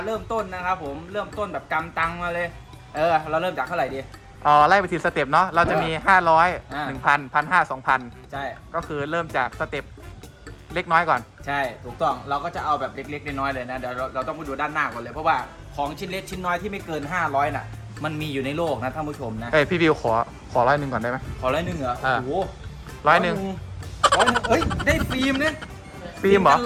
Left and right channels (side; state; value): both; identical; correlation 1.00